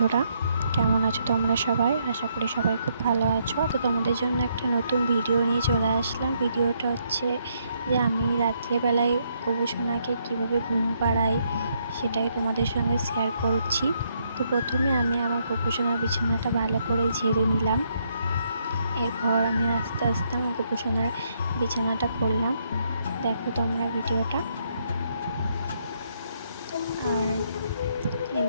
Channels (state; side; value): inverted; both; correlation -0.74